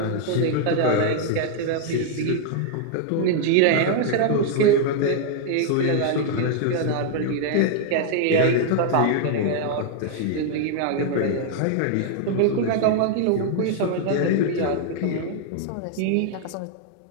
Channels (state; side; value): different; both; correlation 0.00